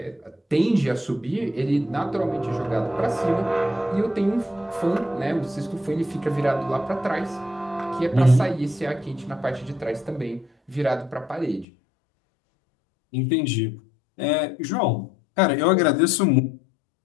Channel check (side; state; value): right; drops out; at 11.7 s